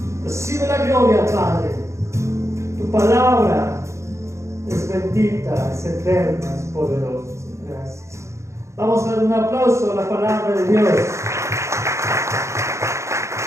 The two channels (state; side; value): late; left; 0.14 ms